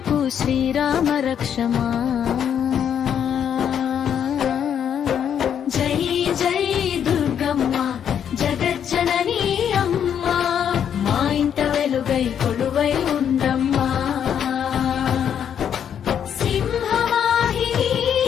శ్రీరామ రక్షమా. జై జై దుర్గమ్మ జగజ్జననీ అమ్మా, మా ఇంట వెలుగై కొలువై ఉండమ్మా. సింహవాహిని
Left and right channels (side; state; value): right; quieter; 8.7 dB